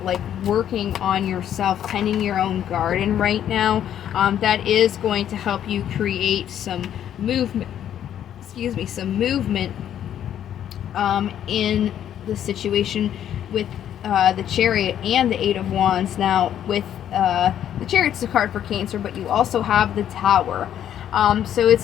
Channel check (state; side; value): quieter; right; 10.3 dB